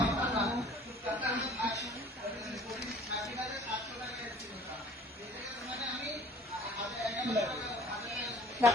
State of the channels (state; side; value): normal; both; correlation 0.50